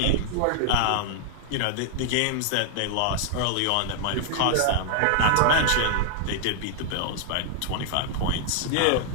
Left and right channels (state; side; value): different; both; correlation 0.00